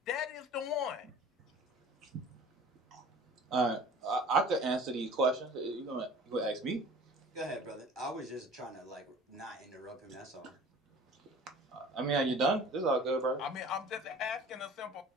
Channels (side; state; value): both; normal; correlation 0.45